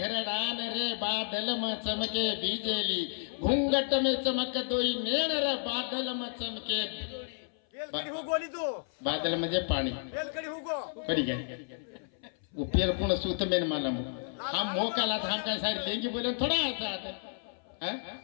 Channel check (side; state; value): right; silent; 57 dB below the other